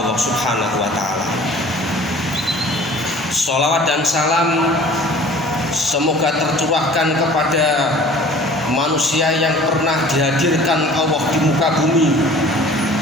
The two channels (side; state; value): both; normal; correlation 0.47